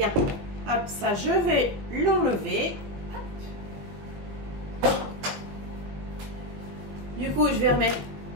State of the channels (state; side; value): late; left; 21 ms